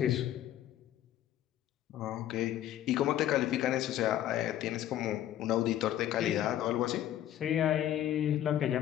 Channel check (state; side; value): quieter; right; 12.1 dB